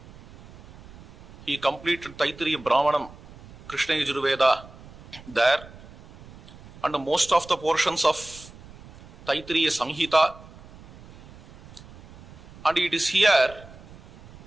He completed Taittiriya Brahmanam, Krishna Yajurveda there, and most of the portions of Taittiriya Samhita. And it is here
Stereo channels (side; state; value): right; noise; rumble, 20 dB below the sound